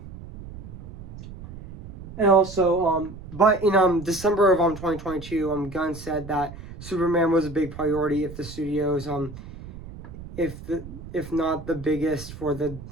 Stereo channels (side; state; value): right; noise; rumble, 14 dB below the sound